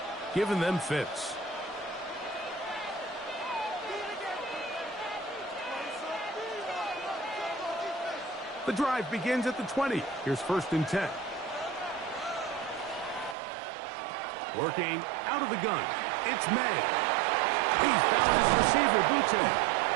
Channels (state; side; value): drops out; left; at 13.4 s